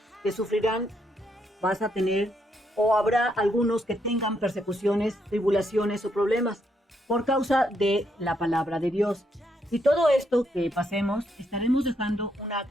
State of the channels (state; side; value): normal; both; correlation 0.76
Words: que sufrirán, vas a tener, o habrá algunos que tengan persecuciones, tribulaciones o problemas por causa de la palabra de Dios. Y todo esto que pasemos, estaremos dejando una